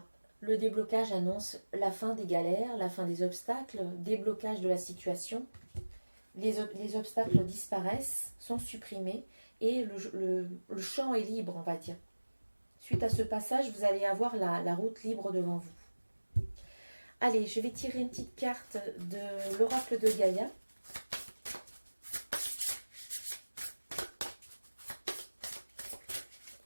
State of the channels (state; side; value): inverted; both; correlation -1.00